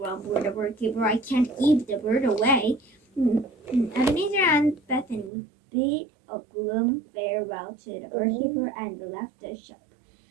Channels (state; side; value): drops out; left; at 5.3 s